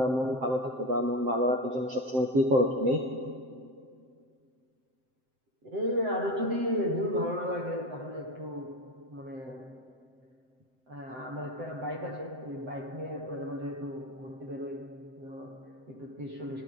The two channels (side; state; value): left; late; 7.7 ms